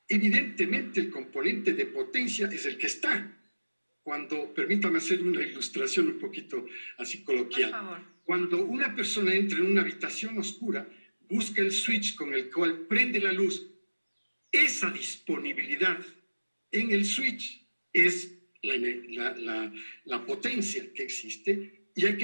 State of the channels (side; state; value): both; inverted; correlation -1.00